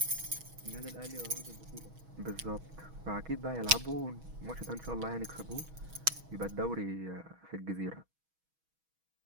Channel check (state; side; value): late; left; 6.2 ms